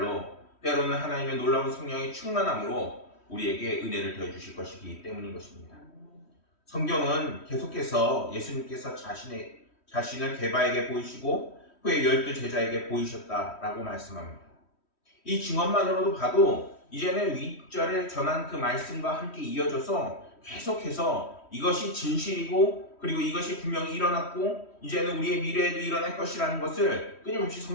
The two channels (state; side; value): late; right; 3.1 ms